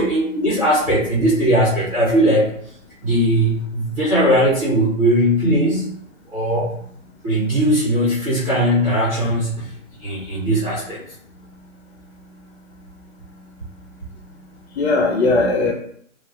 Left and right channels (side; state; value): both; normal; correlation 0.16